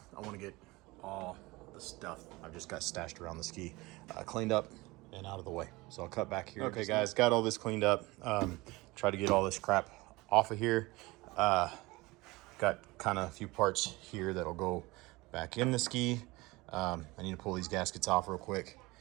I want to get all the stuff I've just got stashed around the ski cleaned up and out of the way. So I'll cut back here. Okay guys, got all this cleaned up. Try to get all this crap off of here. Got kind of a few parts here that'll go back in the ski. I need to pull these gaskets off real quick.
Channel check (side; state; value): left; quieter; 22.1 dB